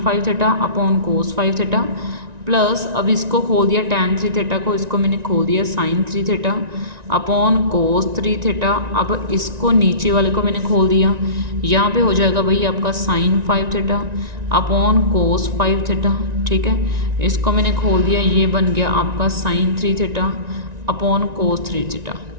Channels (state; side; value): late; left; 1.9 ms